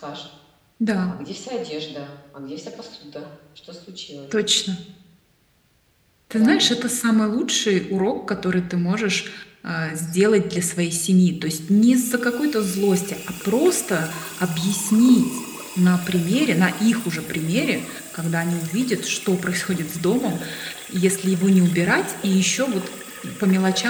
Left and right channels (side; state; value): both; identical; correlation 1.00